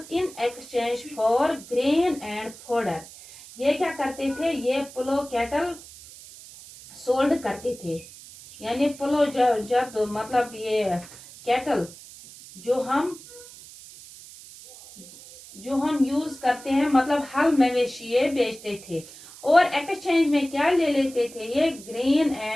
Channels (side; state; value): right; noise; hiss, 18 dB below the sound